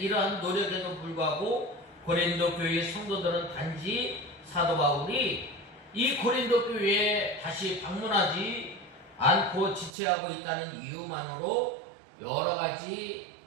노력에도 불구하고 고린도 교회의 성도들은 단지 사도 바울이 이 고린도 교회에 다시 방문하지 않고 지체하고 있다는 이유만으로 여러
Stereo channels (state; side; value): drops out; left; at 9.9 s